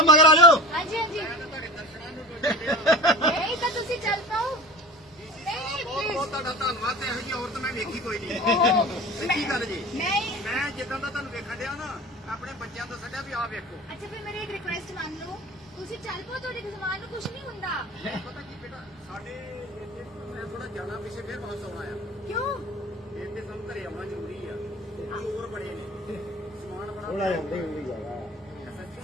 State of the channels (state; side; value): normal; both; correlation 0.36